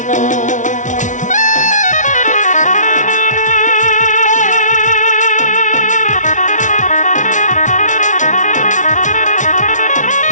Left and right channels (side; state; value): right; late; 0.37 ms